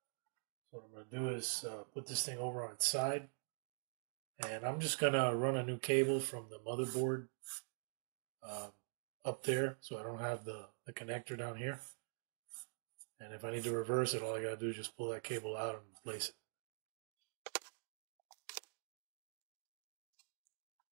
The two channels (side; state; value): left; silent; digital silence